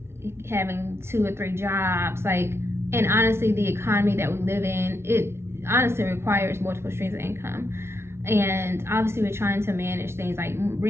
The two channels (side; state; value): left; late; 0.12 ms